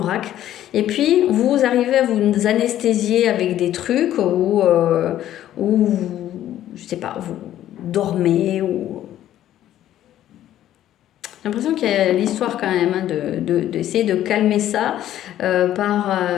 Et puis, vous arrivez à vous anesthésier avec des trucs où je sais pas, vous dormez ou... J'ai l'impression qu'il y a l'histoire quand même hein, d'essayer de calmer ça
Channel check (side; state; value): right; quieter; 12.3 dB